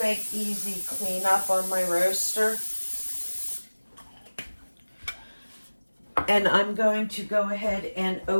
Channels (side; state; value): both; inverted; correlation -1.00